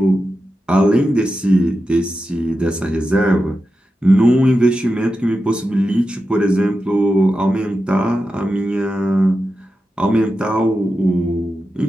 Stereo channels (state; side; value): normal; both; correlation 0.90